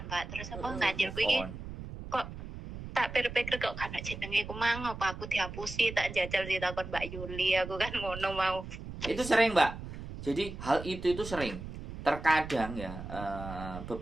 Mbak. Terus apa ganjerku iki Move on. kok tak pikir-pikir kok kan jenenge ku mang apa aku dihapusi, tak jajal sih takon Mbak Yuli, aku kan ngono mau. Itu sering, Mbak. Jadi hal itu sering. Terkadang ya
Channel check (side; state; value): right; noise; rumble, 10 dB below the sound